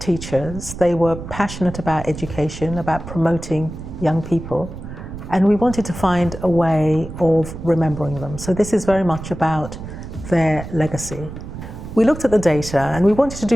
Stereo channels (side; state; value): right; noise; rumble, 11 dB below the sound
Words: They were passionate about education, about promoting young people, and we wanted to find a way of remembering them. So this is very much about their legacy. We looked at the data and we wanted to